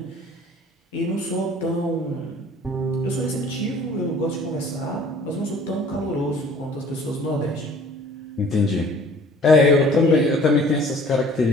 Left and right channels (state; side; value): normal; both; correlation 0.52